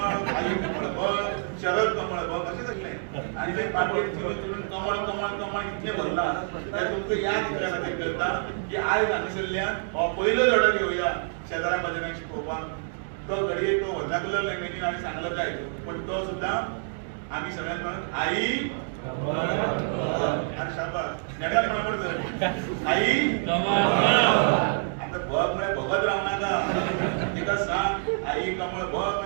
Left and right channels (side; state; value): left; silent; digital silence